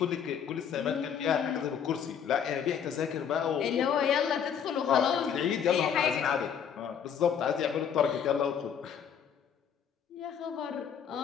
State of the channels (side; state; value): right; quieter; 7.9 dB